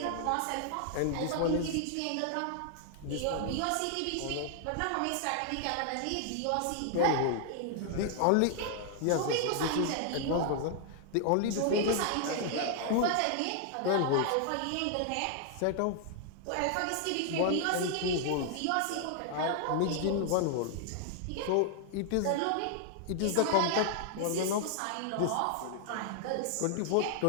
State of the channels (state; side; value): different; both; correlation 0.00